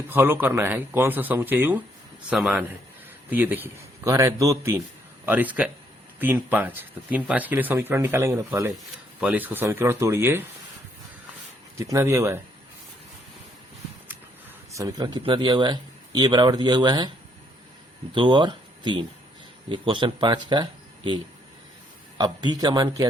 फॉलो करना है, कौन सा समुच्चय युग्म समान है? तो ये देखिए कह रहा है 2, 3 और इसका 3, 5। तो 3, 5 के लिए समीकरण निकालेंगे ना। पहले इसको समीकरण तोड़िए। कितना दिया हुआ है? समीकरण कितना दिया हुआ है? ए बराबर दिया हुआ है 2 और 3। ये क्वेश्चन 5 का ए। अब बी का मान क्या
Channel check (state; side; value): normal; both; correlation 0.70